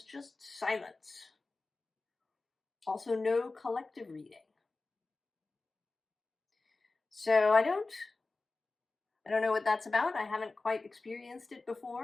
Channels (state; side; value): quieter; right; 3.5 dB